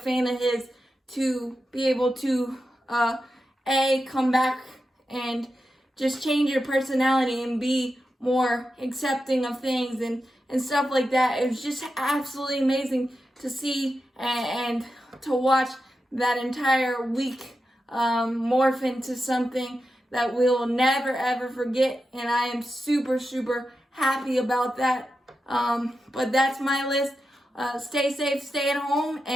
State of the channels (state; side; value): normal; both; correlation 0.90